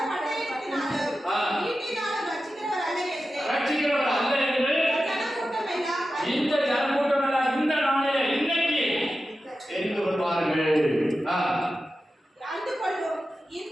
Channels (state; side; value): normal; both; correlation 0.92